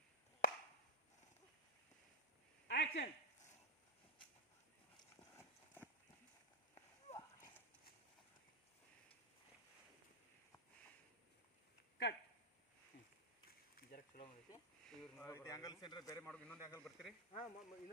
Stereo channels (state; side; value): normal; both; correlation -0.01